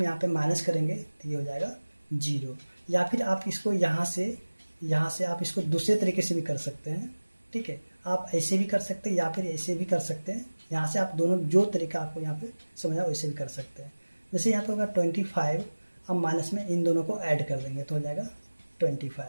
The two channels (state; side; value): inverted; both; correlation -1.00